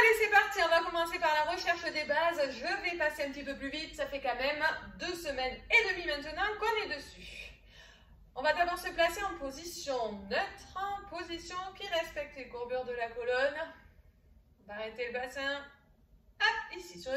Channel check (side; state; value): both; identical; correlation 1.00